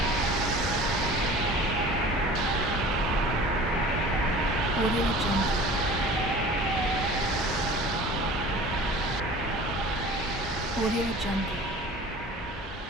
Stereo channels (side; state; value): both; normal; correlation 0.42